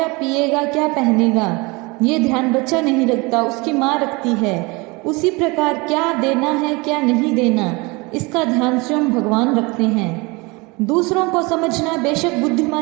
पिएगा, क्या पहनेगा, ये ध्यान बच्चा नहीं रखता, उसकी माँ रखती है। उसी प्रकार क्या देना है क्या नहीं देना, इसका ध्यान स्वयं भगवान रखते हैं। दूसरों को समझना बेशक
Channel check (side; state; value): left; quieter; 25.9 dB